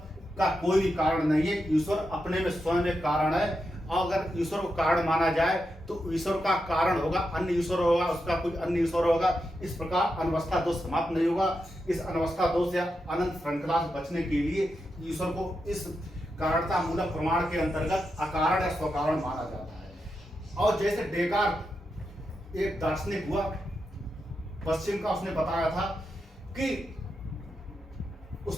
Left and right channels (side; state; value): both; normal; correlation 0.87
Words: का कोई भी कारण नहीं है, ईश्वर अपने में स्वयं एक कारण है। और अगर ईश्वर को कारण माना जाए तो ईश्वर का कारण होगा अन्य ईश्वर होगा, उसका कोई अन्य ईश्वर होगा। इस प्रकार अनवस्था दोष समाप्त नहीं होगा। इस अनवस्था दोष या अनंत श्रृंखला से बचने के लिए ईश्वर को इस कारणता मूलक प्रमाण के अंतर्गत अकारण या स्वकारण माना जाता है। और जैसे डेकार्ट एक दार्शनिक हुआ पश्चिम का, उसने बताया था कि